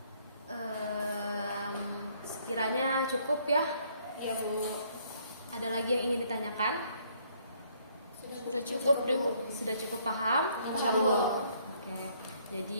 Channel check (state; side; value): inverted; both; correlation -0.65